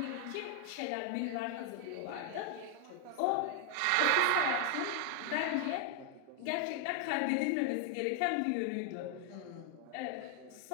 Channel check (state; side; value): different; both; correlation 0.00